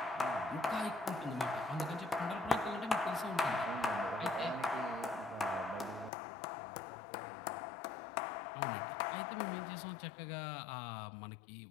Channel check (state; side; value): drops out; right; at 6.1 s